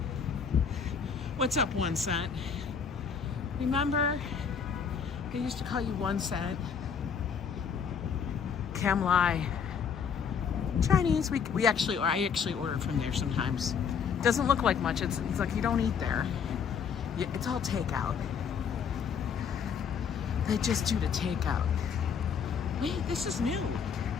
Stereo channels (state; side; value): quieter; right; 6.7 dB